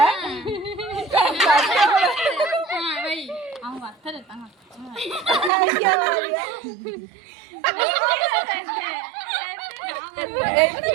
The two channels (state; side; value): drops out; left; at 5.5 s